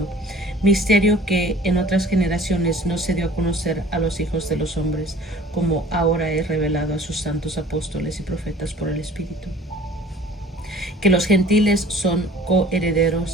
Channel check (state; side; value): normal; both; correlation 0.49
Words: misterio que en otras generaciones no se dio a conocer a los hijos de los hombres, como ahora he revelado a sus santos apóstoles y profetas por el Espíritu. Que los gentiles son